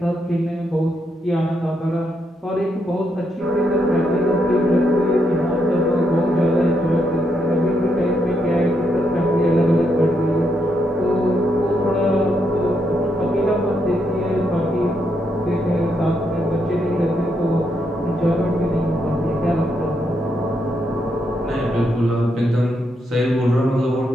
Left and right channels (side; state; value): both; normal; correlation 0.79